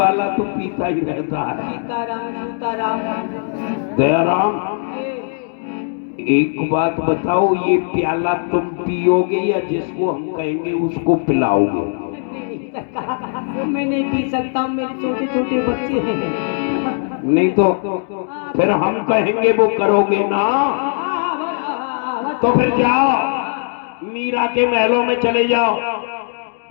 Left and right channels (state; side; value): silent; right; digital silence